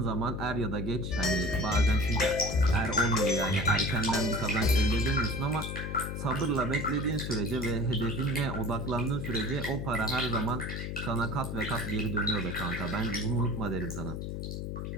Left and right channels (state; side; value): noise; left; hum, 5 dB below the sound